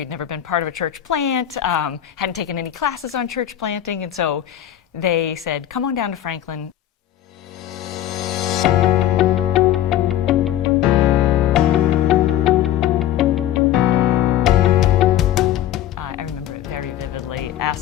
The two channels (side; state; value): right; quieter; 11.8 dB